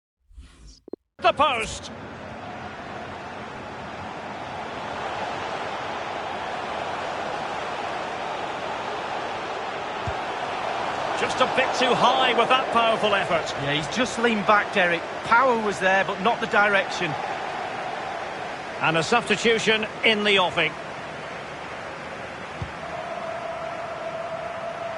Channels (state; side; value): identical; both; correlation 1.00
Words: the post. Just a bit too high with that powerful effort. Yeah, he's just leaned back, Derek. Power was there, but not the direction. And a substitution in the offing.